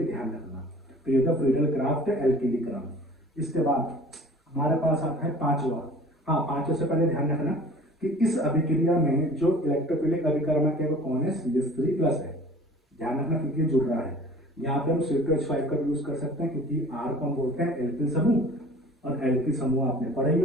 ध्यान रखना। तो ये था फ्रीडल क्राफ्ट एल्किलीकरण। इसके बाद हमारे पास आता है पांचवा। हाँ, पांचवे से पहले ध्यान रखना कि इस अभिक्रिया में जो इलेक्ट्रोफिलिक अभिकर्मक है वो कौन है, CH3 प्लस है, ध्यान रखना क्योंकि ये जुड़ रहा है। यहाँ पे हम C2H5 का यूज कर सकते हैं क्योंकि R को हम बोलते हैं एल्किल समूह, और एल्किल समूह आपने पढ़े ही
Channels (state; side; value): normal; both; correlation 0.46